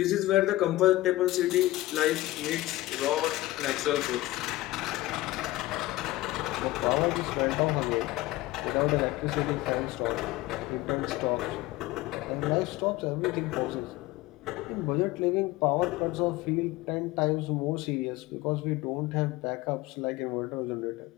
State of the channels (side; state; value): right; quieter; 17.9 dB